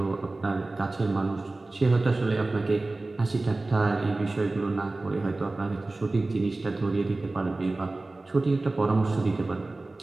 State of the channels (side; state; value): left; quieter; 3.1 dB